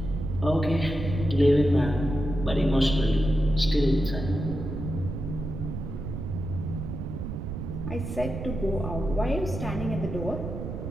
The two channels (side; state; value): right; noise; rumble, 6 dB below the sound